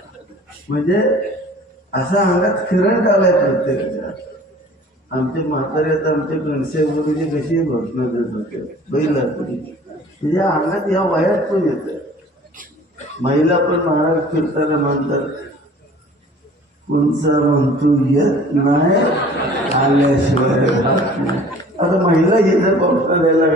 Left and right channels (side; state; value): both; normal; correlation 0.48